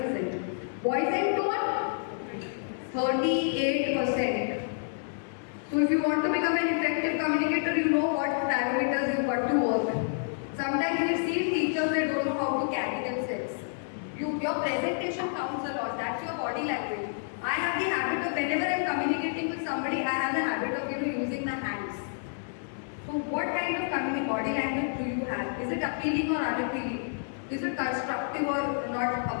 Voice and tone, 38%. So if you want to become an effective communicator, you know what parameters you've got to work. Sometimes we see teachers, they don't know how to carry themselves. Your presentation counts a lot. That's your body language. I have the habit of, whenever I'm communicating with somebody, I have the habit of using the hands. So what kind of body language do you have? Is it appealing or unappealing? Is it constructive or not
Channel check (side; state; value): right; silent; 58 dB below the other